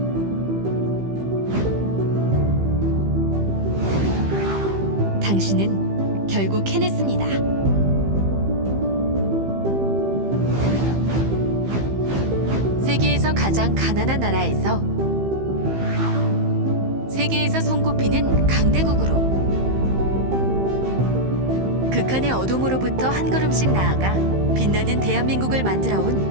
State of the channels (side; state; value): left; late; 15 ms